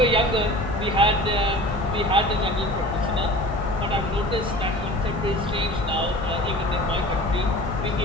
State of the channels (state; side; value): normal; both; correlation 0.40